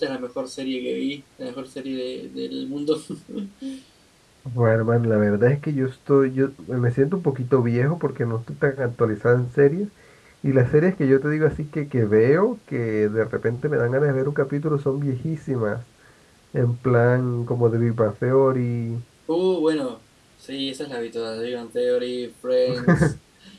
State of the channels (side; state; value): both; identical; correlation 1.00